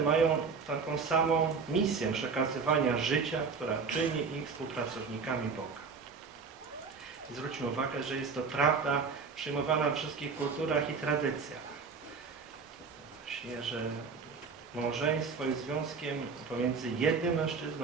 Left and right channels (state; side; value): quieter; left; 5.2 dB